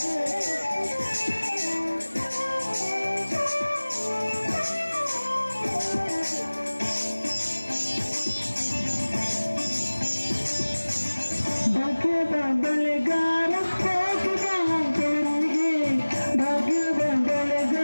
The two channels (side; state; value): both; inverted; correlation -1.00